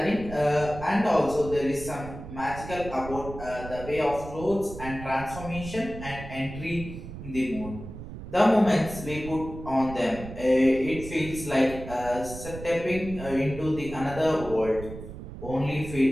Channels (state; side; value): noise; right; rumble, 11 dB below the sound